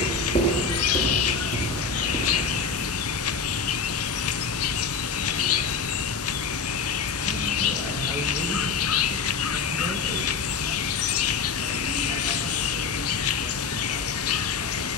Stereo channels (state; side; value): quieter; right; 5.3 dB